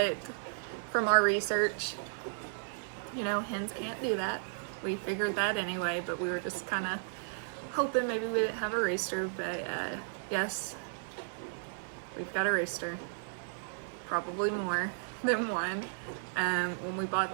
from our research, hens can't do that. We figured that anyway, but we were just kind of hoping maybe we didn't have a rooster. But yes, we've got a rooster, probably more than one. When we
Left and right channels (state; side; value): silent; left; digital silence